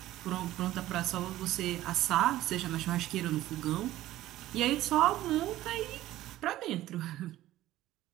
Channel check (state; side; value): quieter; left; 14.9 dB